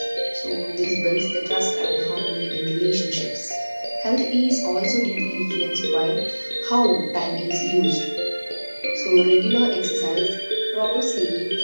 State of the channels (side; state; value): both; inverted; correlation -1.00